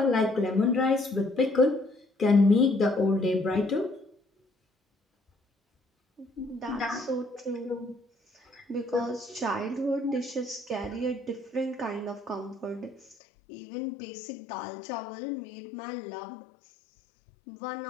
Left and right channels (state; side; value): drops out; right; at 13.2 s